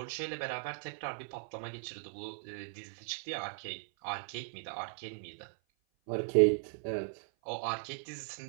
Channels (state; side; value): silent; left; 53 dB below the other